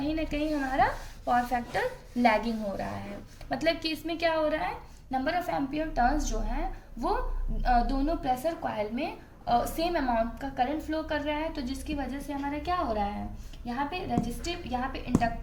ना कहीं हमारा पावर फैक्टर लैगिंग हो रहा है। मतलब कि इसमें क्या हो रहा है, नंबर ऑफ एम्पियर टर्न्स जो हैं वो दोनों प्रेशर कॉइल में सेम अमाउंट का करंट फ्लो कर रहा है। तो जिसकी वजह से हमारा क्या हो रहा है, यहाँ पे रेजिस्टिव, यहाँ पे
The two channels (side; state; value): both; identical; correlation 1.00